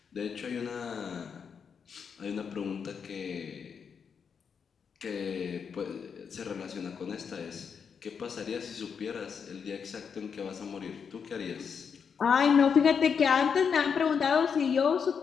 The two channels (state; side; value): quieter; right; 6.6 dB